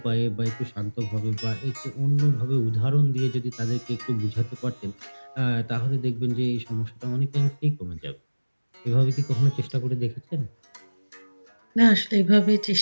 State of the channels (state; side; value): inverted; both; correlation -1.00